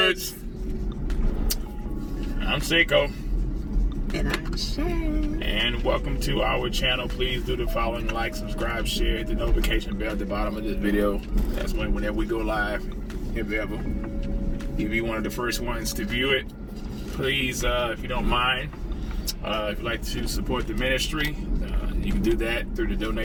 I'm Saiko. And I'm Sharon. And welcome to our channel. Please do the following: like, subscribe, share, hit the notification bell at the bottom of this video. That's whenever we go live, if ever. You'll be one of the first ones to view it. Please, if you don't mind, if you'd like to support the ministry, you can do that through the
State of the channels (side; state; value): both; identical; correlation 1.00